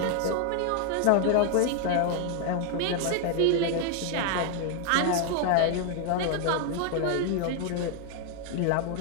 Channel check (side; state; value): both; different; correlation 0.00